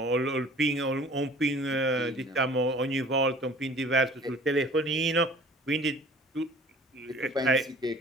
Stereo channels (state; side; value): normal; both; correlation 0.49